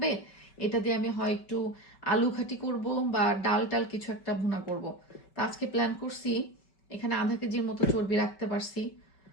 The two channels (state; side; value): late; right; 5.2 ms